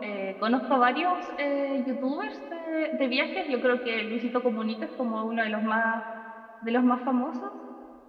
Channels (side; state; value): both; identical; correlation 1.00